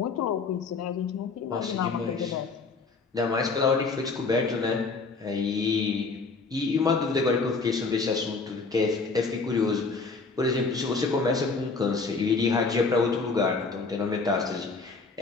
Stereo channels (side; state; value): right; quieter; 4.2 dB